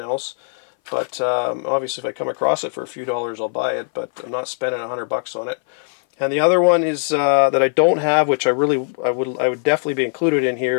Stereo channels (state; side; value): silent; right; 60 dB below the other